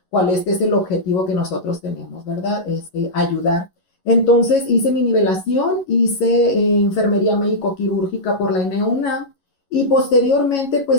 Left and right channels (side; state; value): right; late; 11 ms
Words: cuál es el objetivo que nosotros tenemos, ¿verdad? Ayudar. Entonces hice mi nivelación, hice enfermería médico-quirúrgica por la ENEUNAM y posteriormente